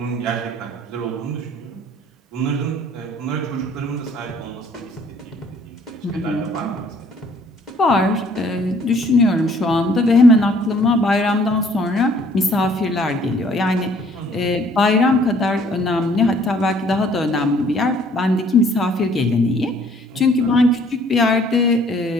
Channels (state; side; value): normal; both; correlation 0.59